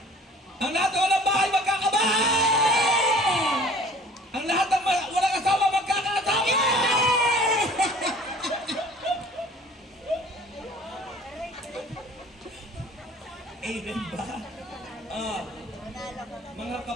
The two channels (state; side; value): normal; both; correlation 0.49